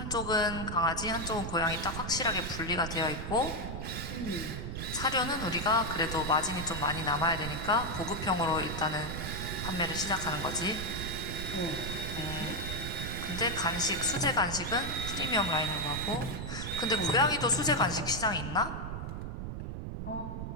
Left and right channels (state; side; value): noise; right; rumble, 5 dB below the sound